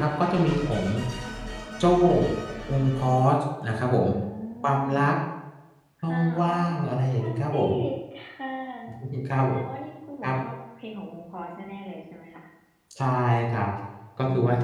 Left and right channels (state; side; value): identical; both; correlation 1.00